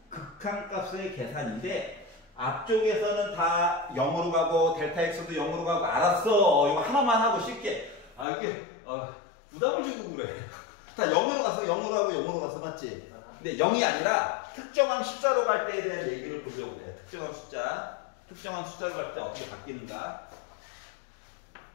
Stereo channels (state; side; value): drops out; right; at 8.2 s